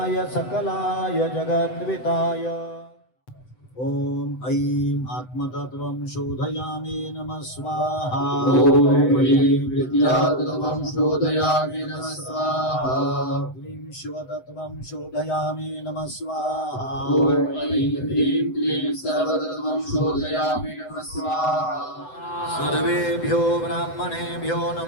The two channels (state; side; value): late; right; 7.9 ms